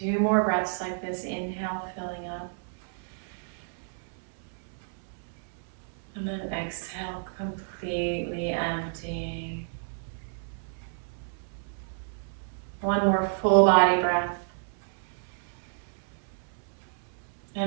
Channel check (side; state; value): left; silent; 58 dB below the other